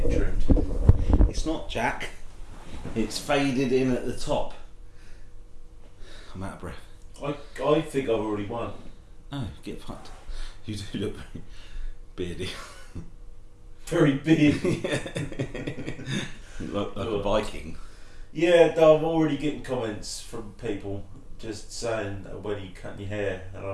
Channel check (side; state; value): both; identical; correlation 1.00